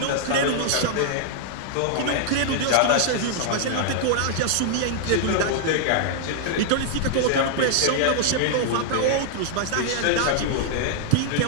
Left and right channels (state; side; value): different; both; correlation -0.01